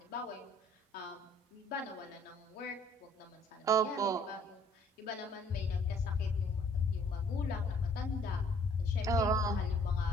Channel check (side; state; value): both; normal; correlation 0.59